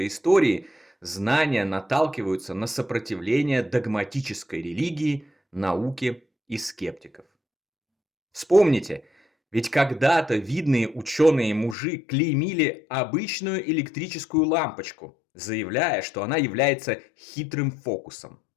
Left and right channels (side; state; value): right; drops out; at 11.8 s